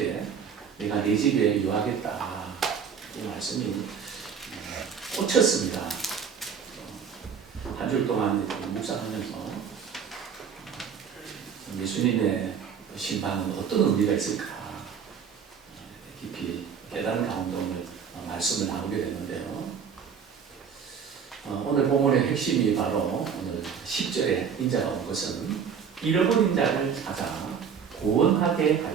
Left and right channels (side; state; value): left; quieter; 7.0 dB